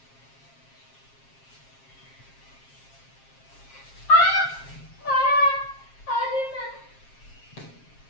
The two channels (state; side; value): late; right; 7.5 ms